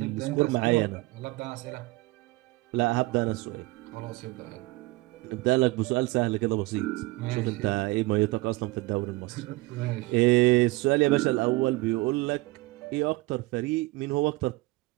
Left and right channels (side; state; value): left; quieter; 21.4 dB